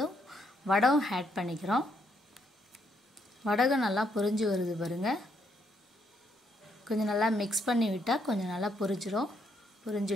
வடகம் ஆட் பண்ணிக்கிறோம். வடகம் நல்லா பொரிஞ்சு வருது பாருங்கள். கொஞ்சம் நல்லா மிக்ஸ் பண்ணி விட்டால் கொஞ்சம் நல்லா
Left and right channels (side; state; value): both; normal; correlation 0.74